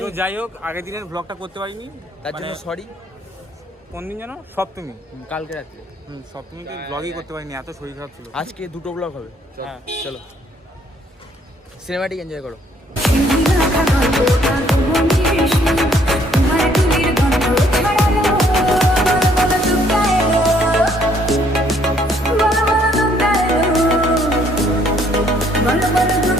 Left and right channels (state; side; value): normal; both; correlation 0.65